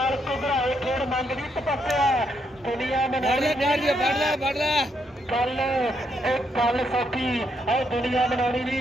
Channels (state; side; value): normal; both; correlation 0.77